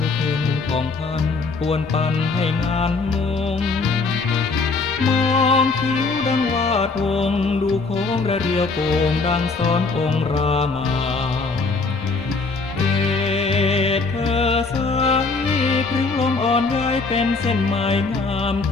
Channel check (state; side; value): quieter; right; 4.0 dB